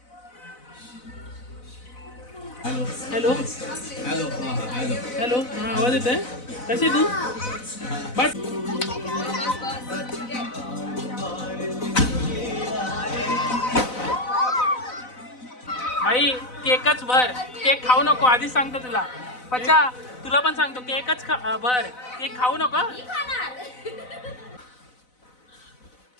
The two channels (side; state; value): right; late; 4.0 ms